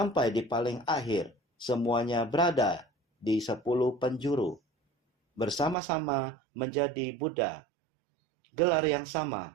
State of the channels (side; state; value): left; drops out; at 5.8 s